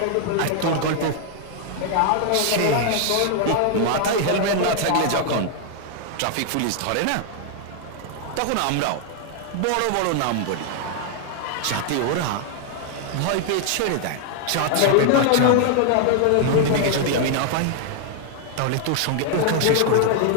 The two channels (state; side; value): different; both; correlation 0.00